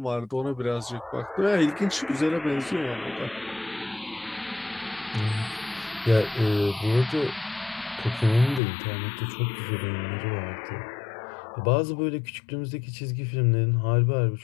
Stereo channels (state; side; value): drops out; right; at 8.6 s